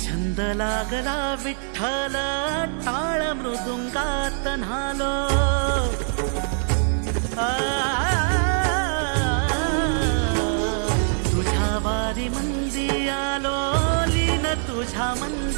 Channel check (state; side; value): silent; left; 63 dB below the other